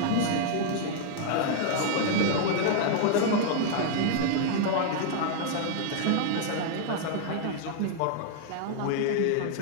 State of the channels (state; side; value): different; both; correlation -0.01